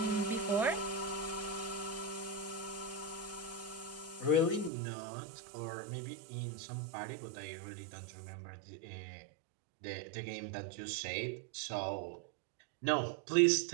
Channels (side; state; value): left; drops out; at 4.7 s